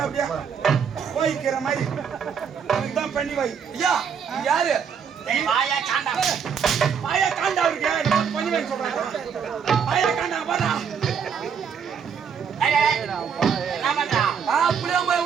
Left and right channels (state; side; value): quieter; left; 7.0 dB